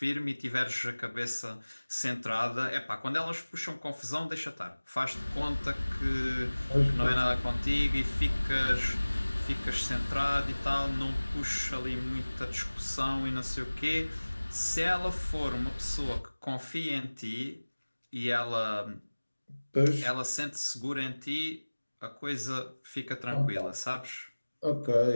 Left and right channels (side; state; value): both; inverted; correlation -1.00